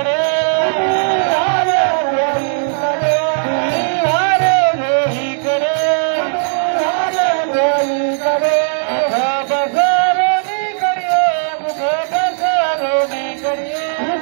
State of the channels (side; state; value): left; silent; digital silence